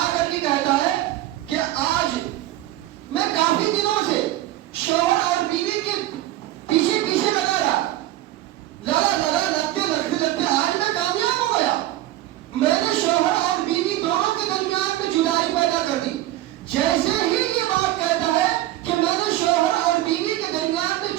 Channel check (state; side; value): quieter; left; 14.9 dB